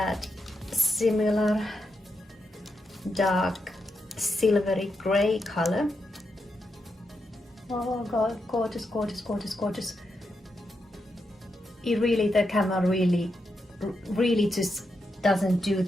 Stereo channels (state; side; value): normal; both; correlation 0.84